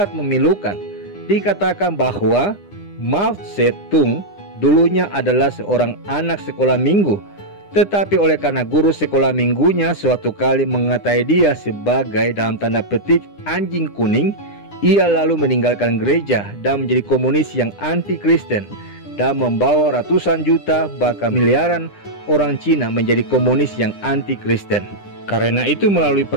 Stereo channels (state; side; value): late; right; 9.9 ms